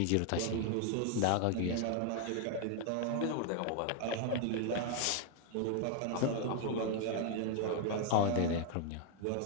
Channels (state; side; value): different; both; correlation 0.00